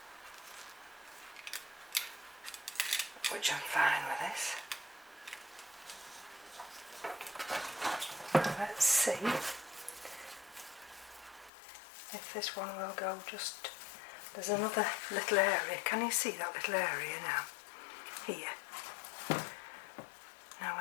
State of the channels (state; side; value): drops out; right; at 11.5 s